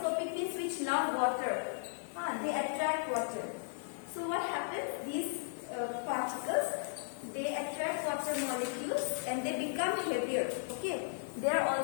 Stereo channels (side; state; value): right; silent; digital silence